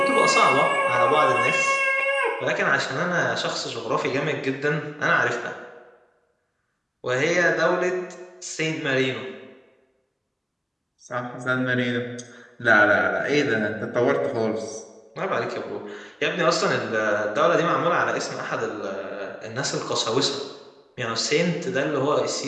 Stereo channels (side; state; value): both; identical; correlation 1.00